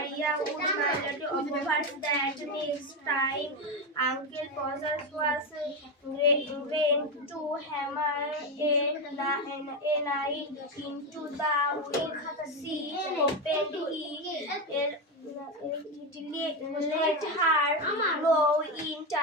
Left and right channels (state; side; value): normal; both; correlation 0.12